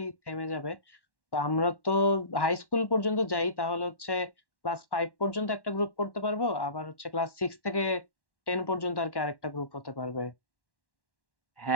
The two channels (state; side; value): late; right; 1.1 ms